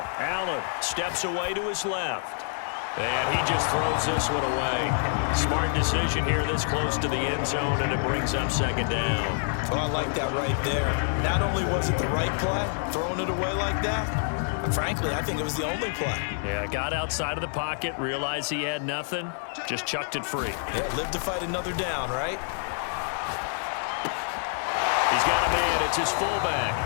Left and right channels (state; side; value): silent; right; digital silence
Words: Allen steps away to his left. And he just throws this one away. Smart decision here this close to the end zone, and it brings up 2nd down. Well, I like that right there. Not only was it the right play, throwing it away like that, frankly, I think it was the only play. Yeah, got outside of the pocket, realized he had nothing, just chucked it free. Yeah, live to fight another down, right? He's got a man. It's his